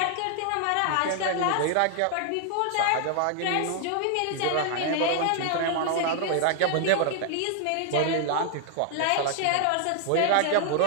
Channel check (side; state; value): both; different; correlation 0.00